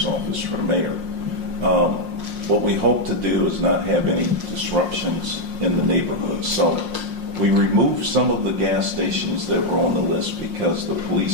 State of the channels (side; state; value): left; late; 5.6 ms